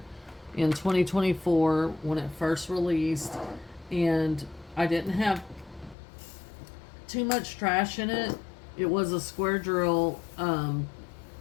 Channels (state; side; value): drops out; right; at 6.0 s